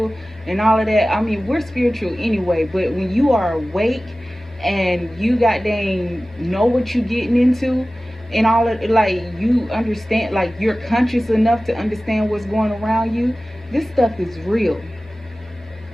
and all of that, I mean we're spiritual anyway, but when you are awake and you goddamn know what you getting into and all of, like, you understand, like you're conscious enough to understand what's going around you, this stuff is real.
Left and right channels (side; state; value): both; normal; correlation 0.96